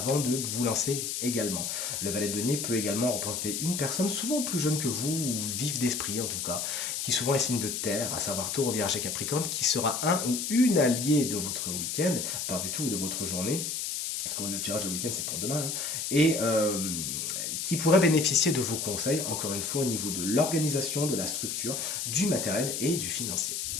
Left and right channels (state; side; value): noise; left; hiss, 3 dB below the sound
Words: de vous lancer également. Le valet de denier peut également représenter une personne souvent plus jeune que vous, ou vive d'esprit en tout cas, qui souvent est signe de terre, à savoir Taureau, Vierge et Capricorne, qui sera un ou une alliée de votre week-end, pas du tout de votre journée, parce que le tirage de week-end c'est pour demain, et qui pourrait bénéficier de vos conseils, encore une fois au niveau de l'organisation, de la structure, du matériel et du financier.